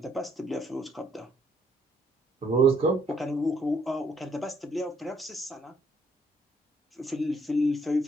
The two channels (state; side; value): normal; both; correlation 0.69